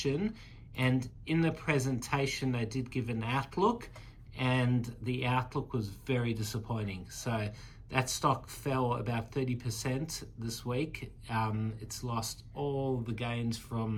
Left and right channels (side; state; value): both; identical; correlation 1.00